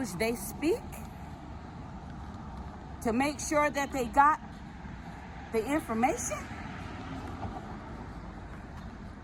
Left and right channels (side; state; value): both; identical; correlation 1.00